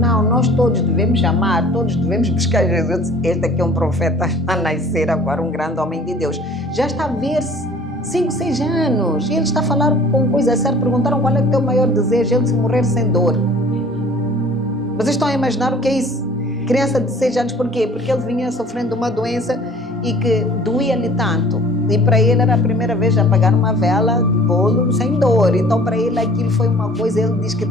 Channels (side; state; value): both; normal; correlation 0.50